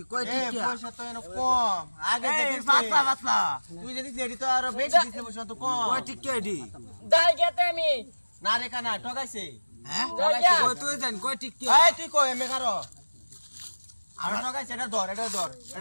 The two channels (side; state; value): both; inverted; correlation -1.00